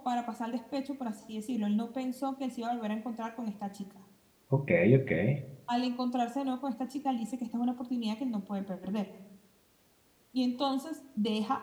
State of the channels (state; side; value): identical; both; correlation 1.00